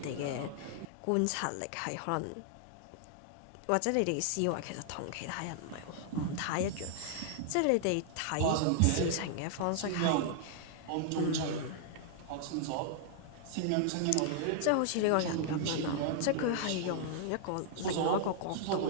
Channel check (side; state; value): both; different; correlation -0.01